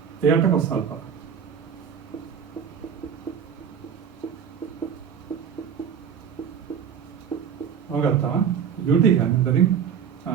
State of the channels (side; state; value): left; quieter; 7.8 dB